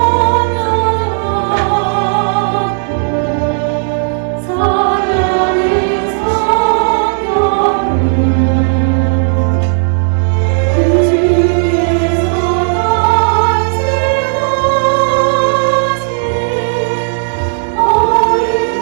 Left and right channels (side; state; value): left; silent; digital silence